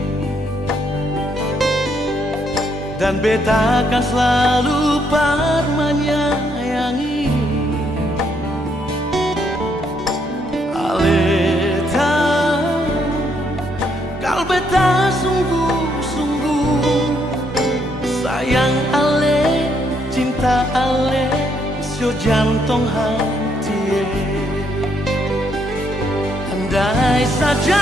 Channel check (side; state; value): both; normal; correlation 0.73